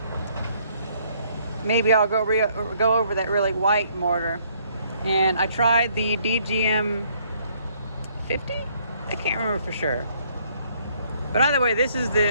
maybe I'll go over that really white mortar. And I tried the DGM 50. I can't remember for sure. But either way, this is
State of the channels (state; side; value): inverted; both; correlation -0.66